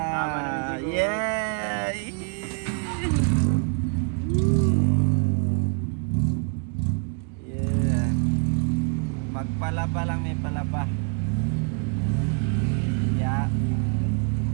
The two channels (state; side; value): quieter; left; 38.3 dB